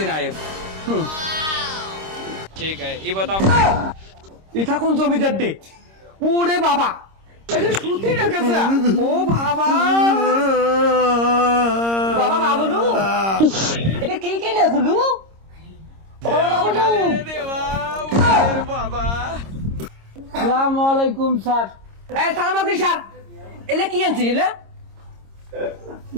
ना ठीक है ये बताओ এটা কোন জমিদার ডে ওরে বাবা এটা সুতি রেখেছে ও বাবা বাবা বাবলু এটা কি কে না গুলু বাবা বাবলু বাবা আসসালামু আলাইকুম স্যার। এই সালাম আলাইকুম স্যার এলে কি আনছিস এলে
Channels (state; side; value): late; left; 26 ms